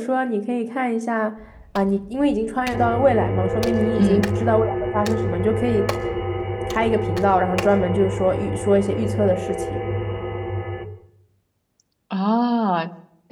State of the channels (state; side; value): identical; both; correlation 1.00